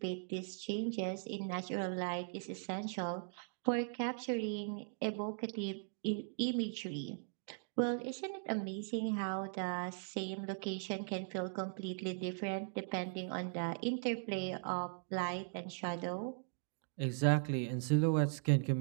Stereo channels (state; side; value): silent; left; digital silence